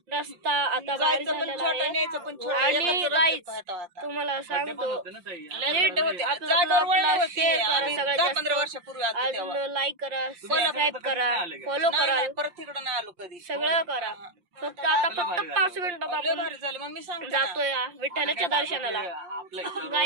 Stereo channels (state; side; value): late; left; 5.7 ms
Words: रस्ता आता भारी जायचं पण झालेला छोटा आहे. न्यायचं पण छोटा. आणि एकाच रस्त्यात गाईज पाहता आता. तुम्हाला बड्डे पण सांगतो होते ना ताई. लेट होते आपलं जागेवर वळण ब्लॉगला होती. शेअर करा आम्ही सगळ्यात 10-15 जास्त. वर्षापूर्वी आलो तेव्हा. अजून लाईक करा सबस्क्राईब करा फॉलो नाही, करा नाही, परत तिकडं नाही आलो कधी. सगळं करा. फक्त 5 मिनिटात लय आपण भारी झाली मग मी सांगते ना. जातोय विठ्ठलाच्या दर्शनाला. आपलं इथं